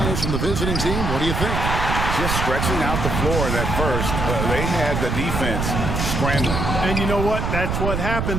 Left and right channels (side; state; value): right; noise; rumble, 1 dB below the sound